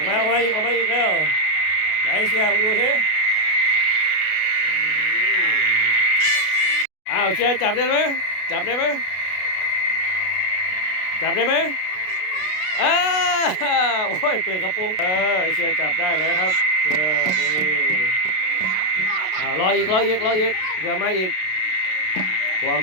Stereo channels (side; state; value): right; late; 32 ms